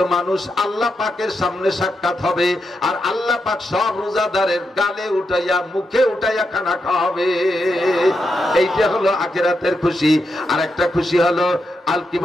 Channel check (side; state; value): both; normal; correlation 0.84